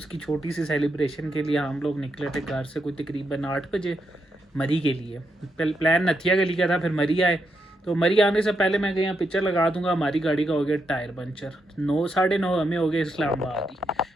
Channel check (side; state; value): both; normal; correlation 0.82